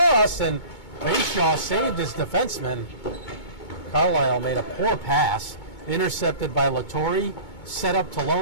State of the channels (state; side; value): late; right; 2.2 ms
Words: and Bayshaw saved his defenseman. Carlisle made a poor pass, intercepted by Latry, set up